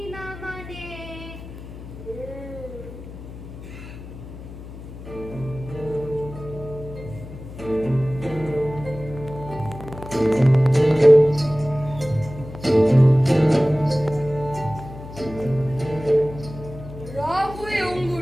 না মানে রাহুয়ে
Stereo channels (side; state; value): left; noise; hum, 13 dB below the sound